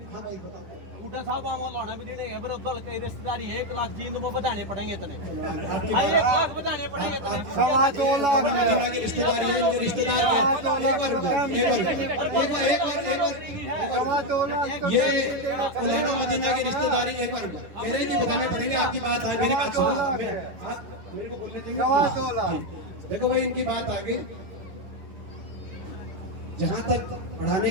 हाँ भाई बताओ बूटा साहब वहाँ लौना भी देने है, दल की रिश्तेदारी 1 लाख जींद में बताने पड़ेंगे तने। 1 लाख बताने पड़ेंगे तने। 2 लाख मदीना की रिश्तेदारी है, इनके रिश्तेदार ये मौलाना मदीना की रिश्तेदारी एक बार मेरे की बताने पड़ेंगे। आपकी बात है, मेरी बात सुनो, मेरे को बोलने देंगे। 2 लाख देखो भाई इनकी बात आ गई, जहाँ तक पढ़ाने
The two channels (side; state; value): left; late; 10 ms